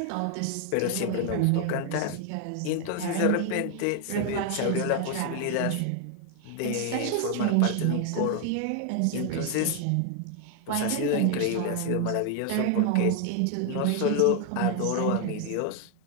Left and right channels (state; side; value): different; both; correlation 0.01